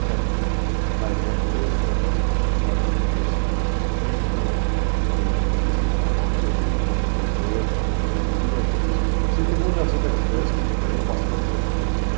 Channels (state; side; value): silent; left; 65 dB below the other